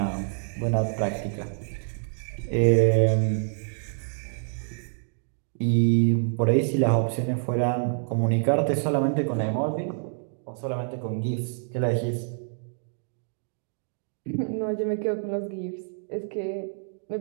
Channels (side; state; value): left; silent; digital silence